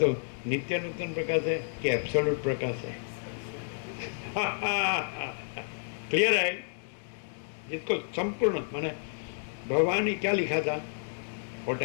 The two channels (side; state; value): right; silent; digital silence